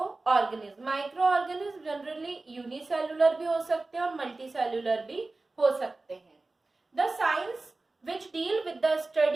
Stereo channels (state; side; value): quieter; left; 3.3 dB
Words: organism. Micro organism generally unicellular भी हो सकते हैं और मल्टीसेल्युलर भी हो सकते हैं. The science which deal with the